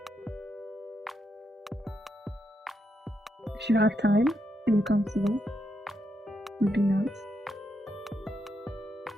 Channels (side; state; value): both; normal; correlation 0.81